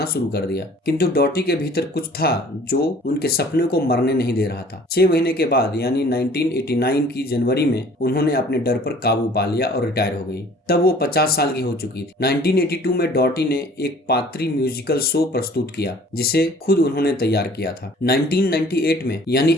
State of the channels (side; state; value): both; normal; correlation 0.51